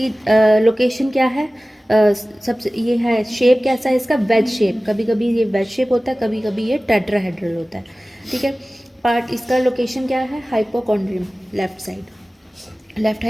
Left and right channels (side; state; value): both; normal; correlation 0.97